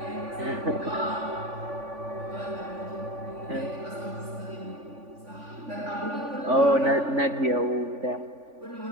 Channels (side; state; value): left; late; 3.5 ms